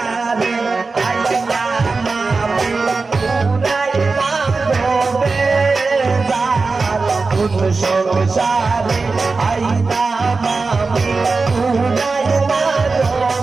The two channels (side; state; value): left; quieter; 4.1 dB